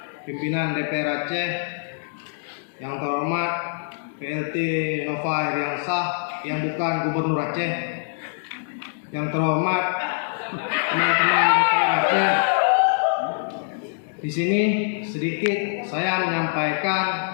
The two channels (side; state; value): right; silent; digital silence